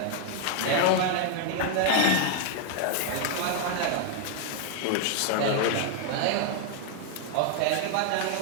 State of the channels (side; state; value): both; different; correlation 0.00